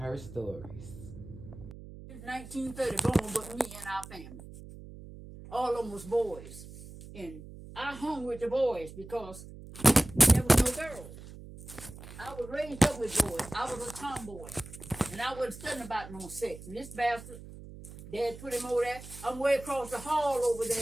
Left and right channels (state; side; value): noise; right; hum, 15 dB below the sound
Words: stories. It's 1930 born with me and our family. All of them was boys. And I hung with the boys because there was no girls. I was raised up with boys. I was a tomboy. And I wasn't studying about no sex. And this bastard, Dad put him over there. I'm way across the hall over